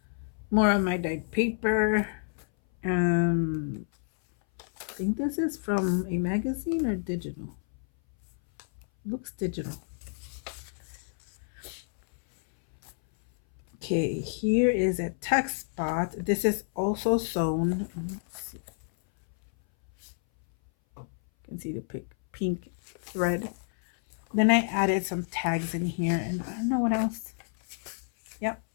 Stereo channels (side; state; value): right; silent; 58 dB below the other